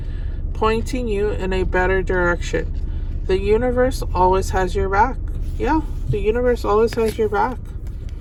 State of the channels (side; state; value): both; identical; correlation 1.00